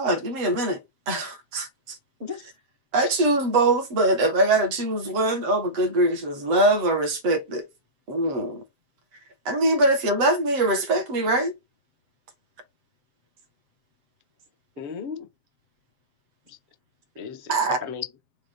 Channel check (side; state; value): left; late; 7.5 ms